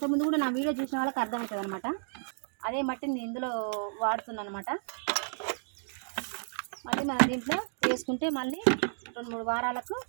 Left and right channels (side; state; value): left; silent; digital silence